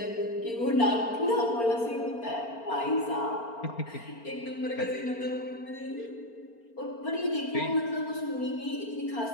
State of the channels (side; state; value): right; late; 4.4 ms